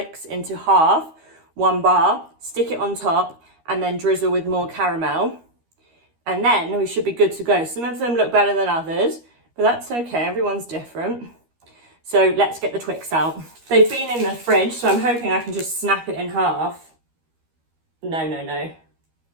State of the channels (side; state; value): left; late; 13 ms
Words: into half, 1 bar, stick it on top, and then drizzle with more caramel. And then we should be good to go. Some of them look better than others, but that's okay, everyone's different. So let's get the Twix out. They've been in the fridge, so I'm hoping I can just snap it in half. No.